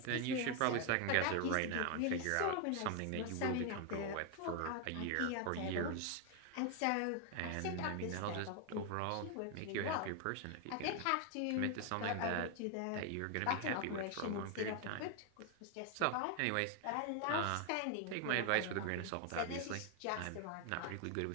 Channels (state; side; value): different; both; correlation 0.01